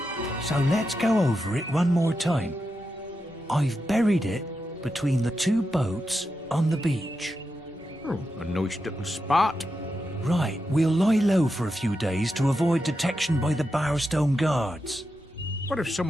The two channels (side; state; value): both; normal; correlation 0.88